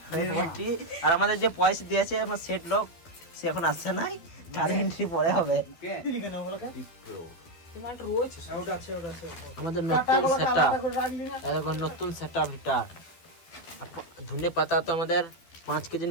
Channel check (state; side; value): late; right; 12 ms